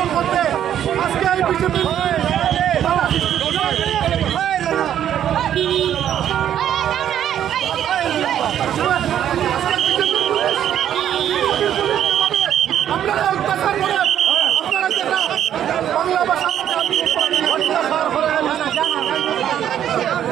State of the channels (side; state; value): left; quieter; 10.3 dB